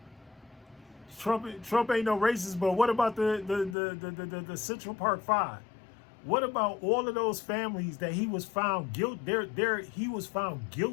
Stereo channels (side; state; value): right; drops out; at 3.8 s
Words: Trump ain't no racist, but what about the Central Park Five? What about all of those families that he was found guilty? He was found